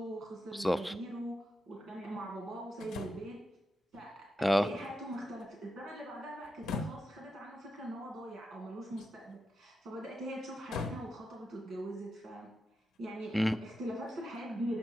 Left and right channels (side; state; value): both; normal; correlation 0.87